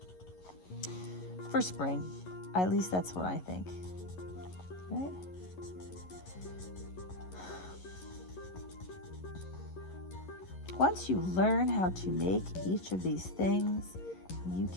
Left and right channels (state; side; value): late; right; 11 ms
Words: for spring. At least that's what I think. Right? Once you learn how to make each of these things, you